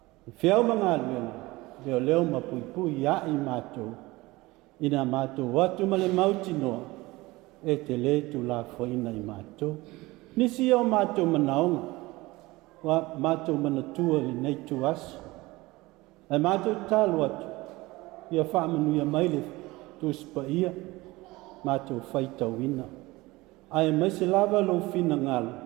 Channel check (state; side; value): quieter; left; 20.7 dB